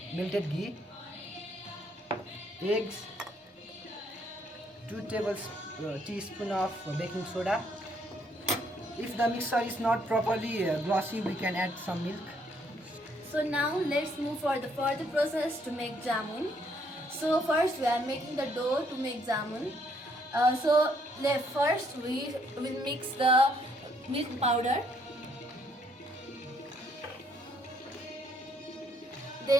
melted ghee, eggs, 2 teaspoons of baking soda. If the mixture is not properly glossy, we can add some milk. So now let's move for the further process to make jamun. So first we are making the dough to make jamun. First we will mix the milk powder.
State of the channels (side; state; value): both; normal; correlation 0.69